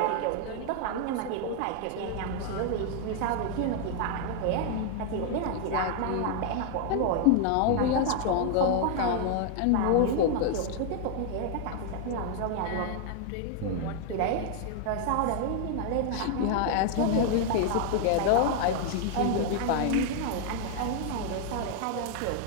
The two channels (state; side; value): different; both; correlation 0.00